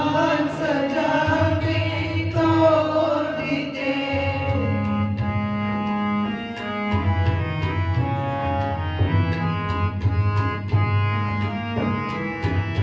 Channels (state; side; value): identical; both; correlation 1.00